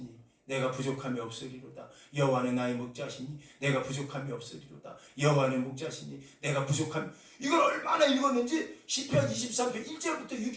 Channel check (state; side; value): identical; both; correlation 1.00